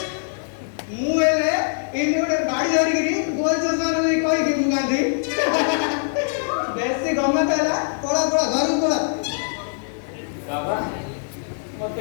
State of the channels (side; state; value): right; silent; digital silence